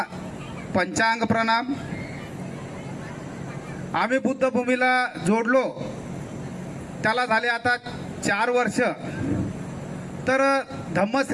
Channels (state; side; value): identical; both; correlation 1.00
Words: पंचांग प्रणाम. आम्ही बुद्धभूमीला जोडलो त्याला झाले आता 4 वर्ष. तर